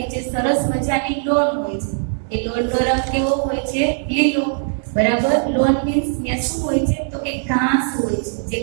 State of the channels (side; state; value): left; silent; 66 dB below the other